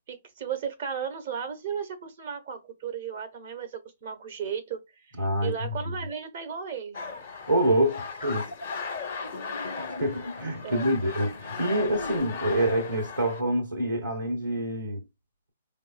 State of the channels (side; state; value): both; inverted; correlation -0.63